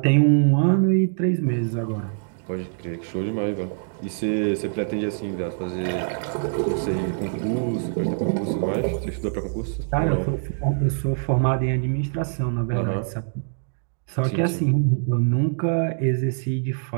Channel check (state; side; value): silent; left; digital silence